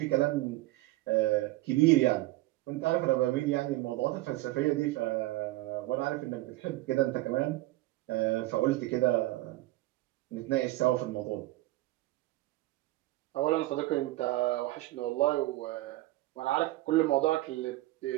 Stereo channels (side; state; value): left; quieter; 18.1 dB